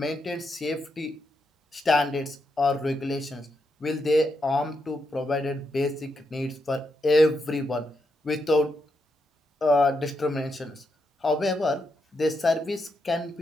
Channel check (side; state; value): both; normal; correlation 0.82